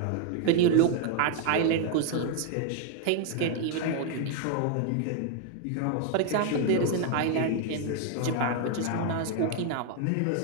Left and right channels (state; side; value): different; both; correlation 0.00